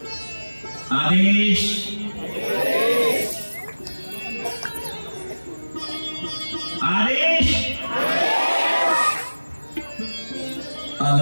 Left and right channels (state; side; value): inverted; both; correlation -1.00